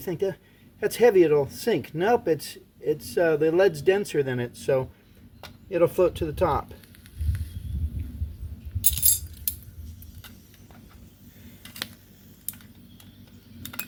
that's heavy, it'll sink. Nope, it's the lead's denser than it, so it'll float to the top.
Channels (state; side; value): identical; both; correlation 1.00